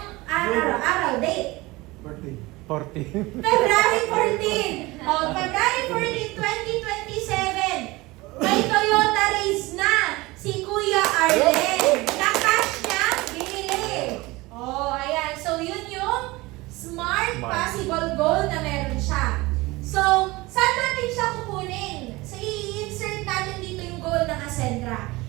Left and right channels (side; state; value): left; quieter; 21.5 dB